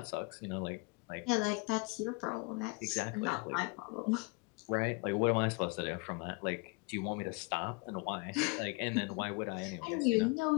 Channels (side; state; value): right; quieter; 29.7 dB